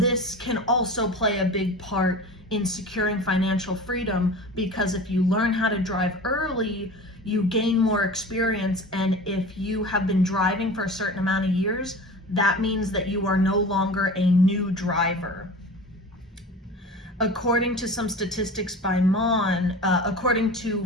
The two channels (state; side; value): normal; both; correlation 0.36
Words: can also play a big part in securing financial freedom, because if you learn how to drive early, you gain more experience, and if you have been driving for a certain amount of years, that means that you are no longer a new driver. According to some statistics by according to